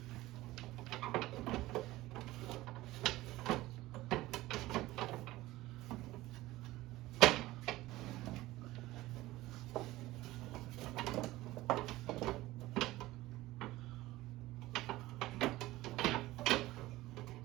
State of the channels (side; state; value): left; quieter; 17.7 dB